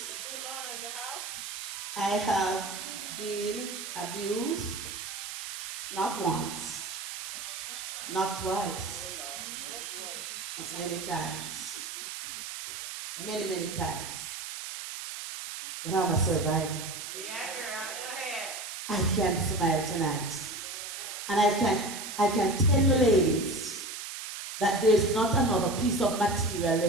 I have been abused not once, not twice, but many times. Many times. But I'm a survivor. Yeah, girl, go ahead. I can smile tonight. And I can tell you, ladies, that there's not another piece of material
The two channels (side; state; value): right; noise; hiss, 7 dB below the sound